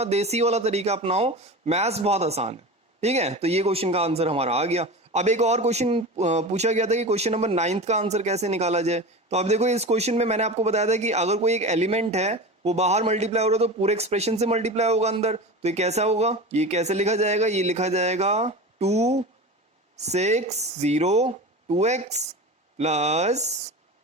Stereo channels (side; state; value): both; normal; correlation 0.29